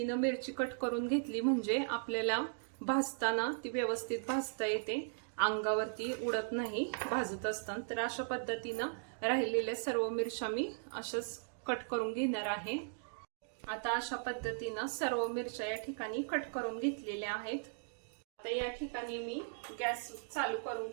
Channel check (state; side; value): silent; left; digital silence